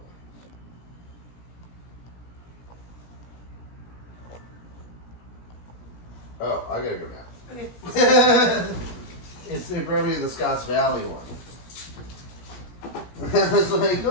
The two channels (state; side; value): late; right; 17 ms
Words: Oh, I gotta go now. It's probably the Scotts Valley one. It's like,